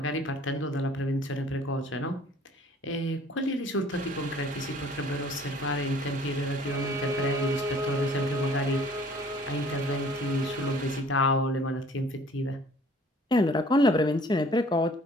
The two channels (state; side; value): normal; both; correlation 0.53